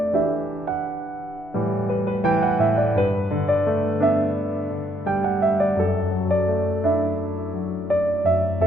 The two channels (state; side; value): normal; both; correlation 0.72